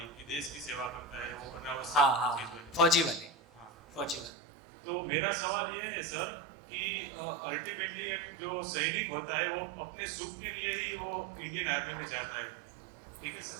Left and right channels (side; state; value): left; drops out; at 4.3 s